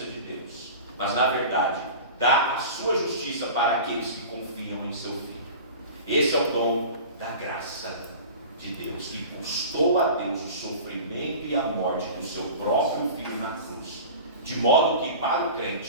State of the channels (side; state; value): both; inverted; correlation -0.36